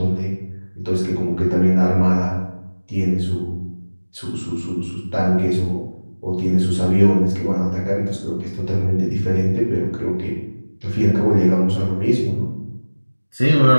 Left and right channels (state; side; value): inverted; both; correlation -1.00